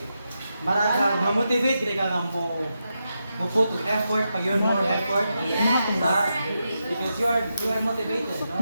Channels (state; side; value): inverted; both; correlation -0.86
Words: marag ma-motivate gid ka nga mo put effort pag yun more effort because you are motivated, no?